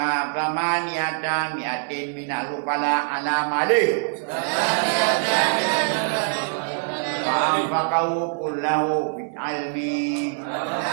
pramaniyata mi'atin minal upala ala malih. Fa'anfaqahu kullahu bil ilmi.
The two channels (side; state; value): left; silent; digital silence